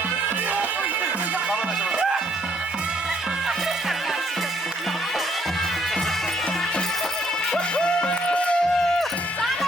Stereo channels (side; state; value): both; normal; correlation 0.68